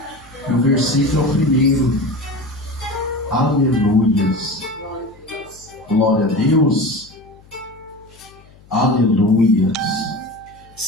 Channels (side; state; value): left; noise; hum, 26 dB below the sound